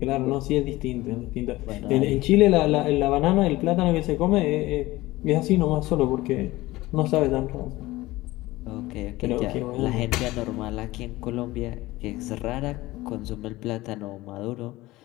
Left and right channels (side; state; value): right; quieter; 18.7 dB